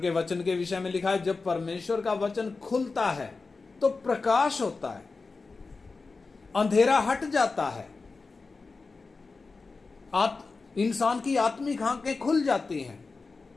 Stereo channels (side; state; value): right; quieter; 4.1 dB